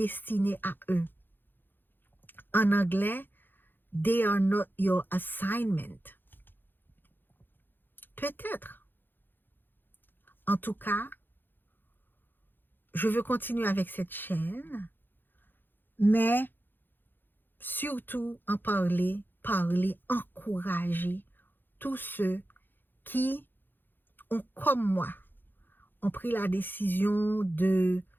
à eux. En anglais, they are not your assignment. Peut-être. En tout cas, je veux continuer avec cette chaîne, mais surtout en parler, encourager tous ceux qui ont, comme moi, ont pris la décision de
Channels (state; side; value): late; right; 0.095 ms